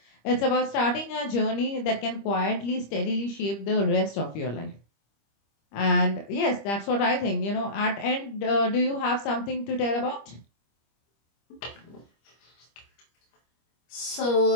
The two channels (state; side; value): late; right; 25 ms